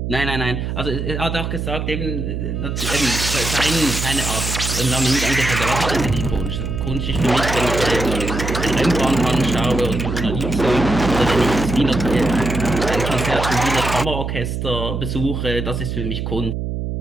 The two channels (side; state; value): right; noise; hum, 3 dB below the sound